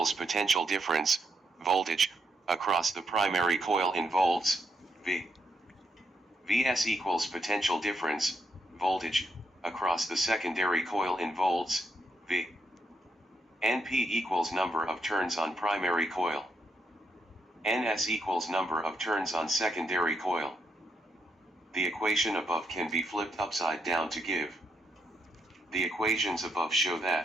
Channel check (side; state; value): both; normal; correlation 0.79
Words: potential difference, voltage, across the primary coil in volts, Vs equals potential difference, voltage, across the secondary coil in volts, V. Np equals number of turns on primary coil. Ns equals number of turns on secondary coil. The equation above can be flipped upside down to give. The equations above show